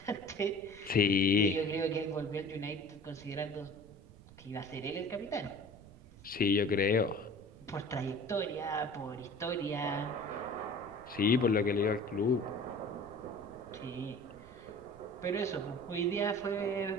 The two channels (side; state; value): right; noise; rumble, 21 dB below the sound